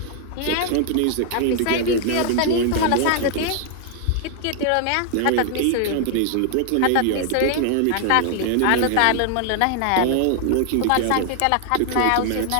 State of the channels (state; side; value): different; both; correlation 0.00